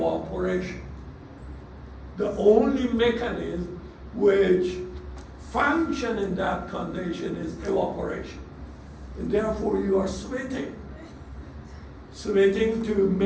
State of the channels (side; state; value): both; identical; correlation 1.00